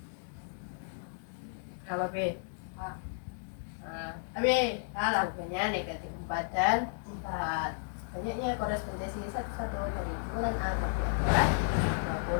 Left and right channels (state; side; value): silent; right; digital silence